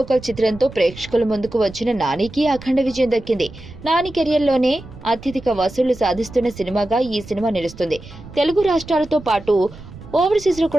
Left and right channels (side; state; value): right; noise; rumble, 17 dB below the sound